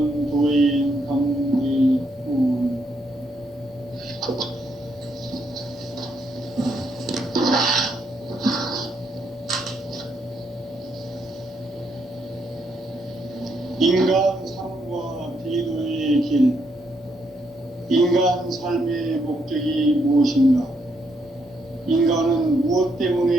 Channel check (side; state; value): both; normal; correlation 0.76